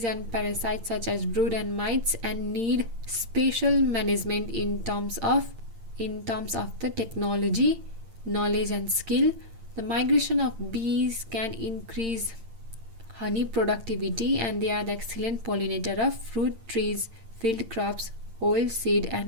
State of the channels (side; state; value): left; late; 8.8 ms